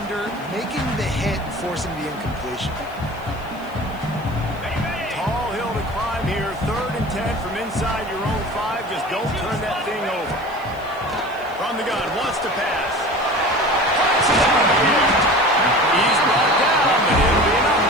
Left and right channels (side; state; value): left; noise; hiss, 26 dB below the sound